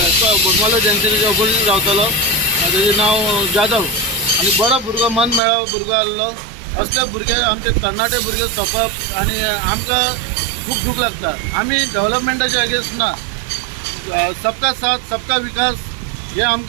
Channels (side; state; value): left; drops out; at 5.4 s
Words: तो बोगमालो जंक्शनाच्या ऑपोजीट रावतालो तेजें नांव जाधव आनी बरो भुरगो मन मेळावो भुरगो आहलो. असले भुरगे आमचे तरणाटे भुरगे सोंपप आनी आमकां खूब दूख लागता. आमी डेव्हलपमेंटाचे अगेन्स्ट ना. सबका साथ सबका विकास हे